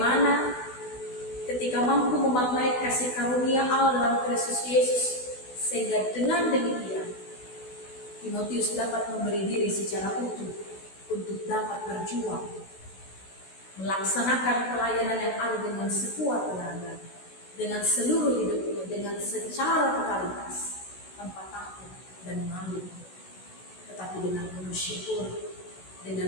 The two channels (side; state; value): right; late; 16 ms